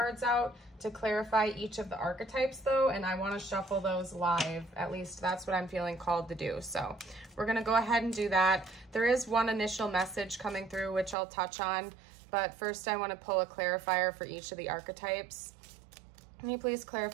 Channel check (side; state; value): left; drops out; at 11.2 s